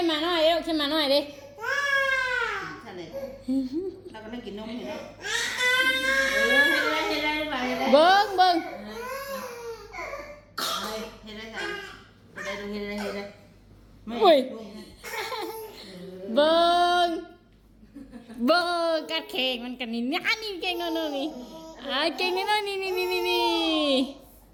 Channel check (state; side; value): identical; both; correlation 1.00